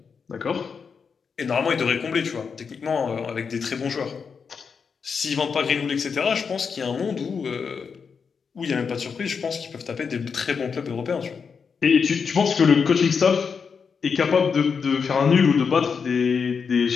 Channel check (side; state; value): right; quieter; 5.9 dB